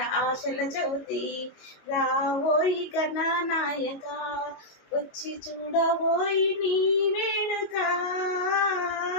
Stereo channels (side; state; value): right; late; 22 ms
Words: ఆశల చవితి రావోయి గణనాయక వచ్చి చూడబోయి నీ వేడుక